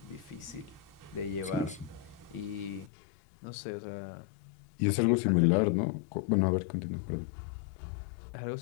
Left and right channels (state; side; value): drops out; right; at 2.9 s